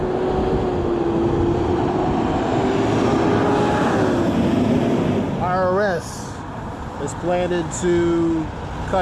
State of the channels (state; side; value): identical; both; correlation 1.00